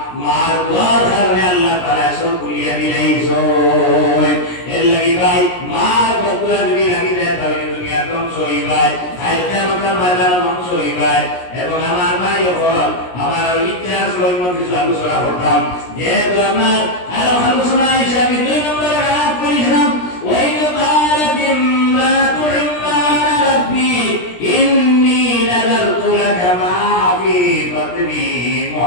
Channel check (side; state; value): right; late; 17 ms